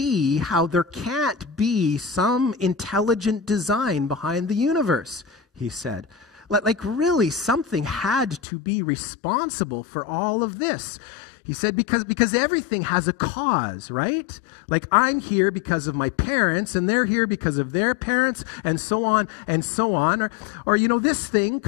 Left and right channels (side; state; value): right; drops out; at 8.4 s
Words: how there can't be some intelligent design behind the universe," he said. Really, something had to be responsible for all of this. He said, because everything has a cause, right? I'm here because of my parents, and they're here because of their parents, and so on and so on. Or this thing